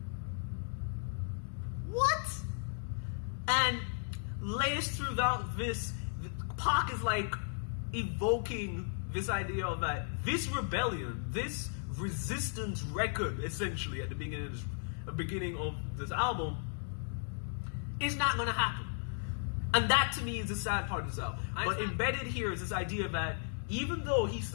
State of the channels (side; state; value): right; silent; digital silence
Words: What? And laced throughout this, Pac is like evoking this idea of that this rebellion, this resistance record, essentially at the beginning of this album, is not going to happen. And that to me is the sad part of this album. But embedded here is this idea that even though he